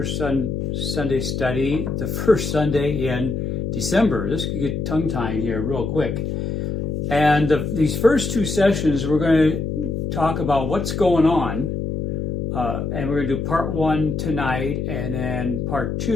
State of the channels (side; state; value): left; noise; hum, 2 dB below the sound